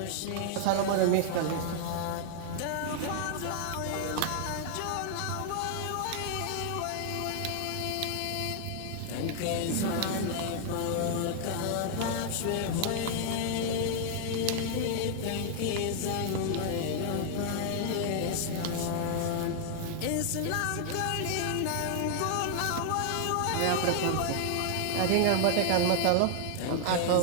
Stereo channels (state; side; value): different; both; correlation 0.00